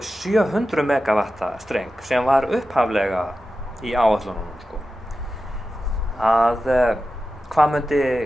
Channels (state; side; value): normal; both; correlation 0.93